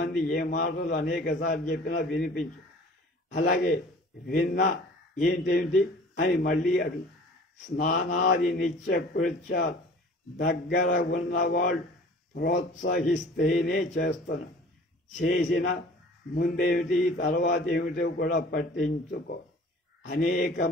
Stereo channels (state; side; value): normal; both; correlation 0.47